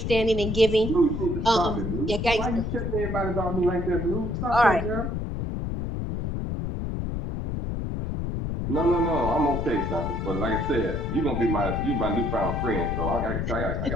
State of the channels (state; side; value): noise; left; rumble, 3 dB below the sound